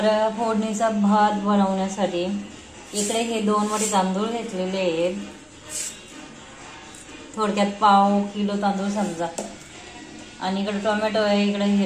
फोडणीचा भात बनवण्यासाठी इकडे हे 2 वाटी तांदूळ घेतलेले आहेत, थोडक्यात पाव किलो तांदूळ समजा. आणि इकडे टोमॅटो आहे, इकडे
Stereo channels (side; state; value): both; identical; correlation 1.00